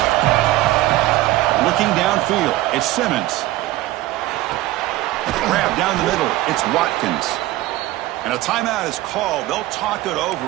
Looking downfield, it's Simmons. Grab down the middle, it's Watkins. And a timeout is called. They'll talk it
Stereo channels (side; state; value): left; quieter; 16.9 dB